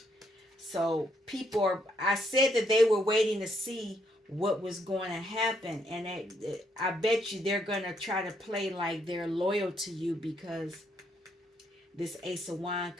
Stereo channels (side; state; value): both; normal; correlation 0.73